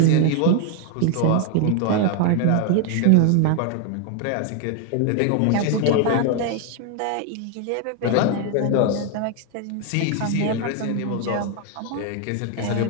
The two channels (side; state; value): both; different; correlation 0.00